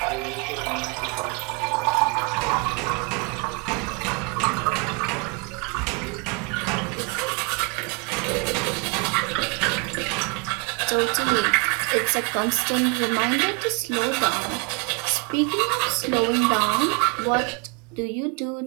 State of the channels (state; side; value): quieter; left; 33.0 dB